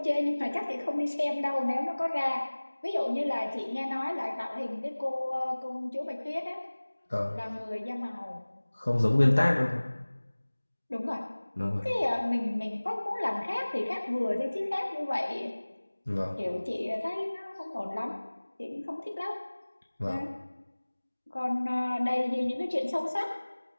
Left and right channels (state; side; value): inverted; both; correlation -1.00